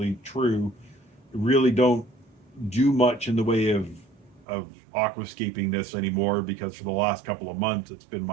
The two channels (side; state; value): left; drops out; at 4.5 s